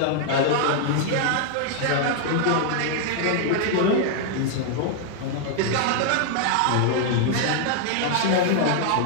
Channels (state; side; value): different; both; correlation 0.00